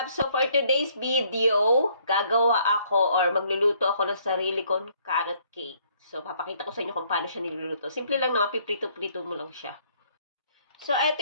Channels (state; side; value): inverted; both; correlation -0.65